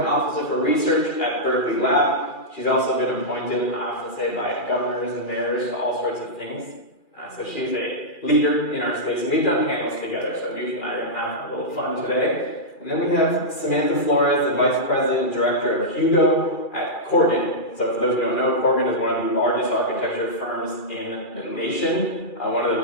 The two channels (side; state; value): right; late; 2.4 ms